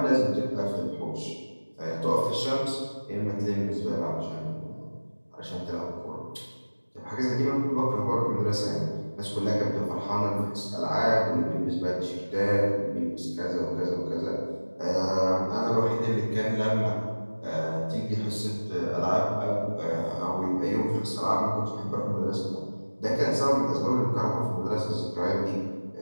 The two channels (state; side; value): inverted; both; correlation -1.00